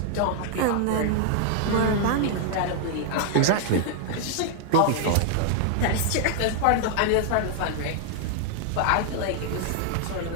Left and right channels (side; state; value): both; different; correlation 0.00